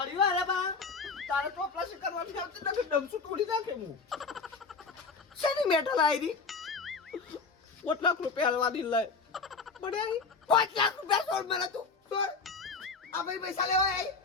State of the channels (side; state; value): right; quieter; 4.6 dB